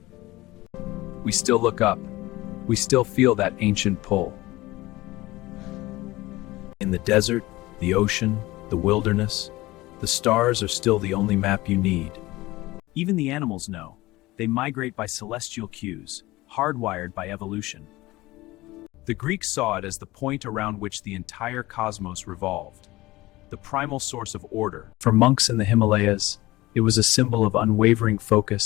We still look up. We still feel that ancient pull. In the desert, the ocean, the wilderness, the stars are still the only map you need. Even the animals know. They migrate by celestial cues, hardwired by evolution. The Greeks saw it as the point around which the entire cosmos revolved, the primal source of order. For monks in the Himalayas, it was a symbol of unwavering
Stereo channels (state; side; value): quieter; right; 19.2 dB